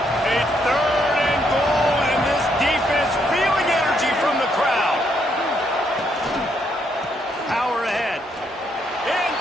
3rd and goal, and this defense feeling energy from the crowd. Power ahead.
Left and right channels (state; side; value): normal; both; correlation 0.74